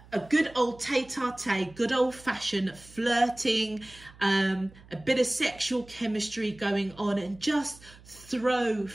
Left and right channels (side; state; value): right; noise; hum, 23 dB below the sound